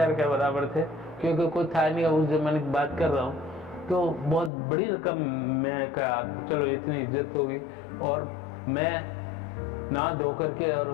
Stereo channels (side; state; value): right; drops out; at 4.5 s